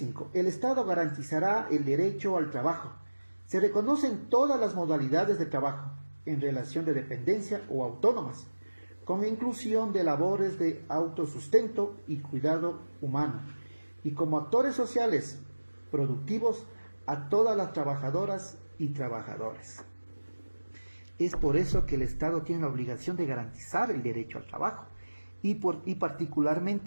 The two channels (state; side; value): inverted; both; correlation -1.00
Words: El Estado garantizará el derecho al trabajo. Se reconocen todas las modalidades de trabajo en relación de dependencia o autónomas, con inclusión de labores de autosustento y cuidado humano, y como actores sociales productivos a todas las trabajadoras y trabajadores. Es por eso que el Estado tiene la obligación de garantizar el derecho al trabajo y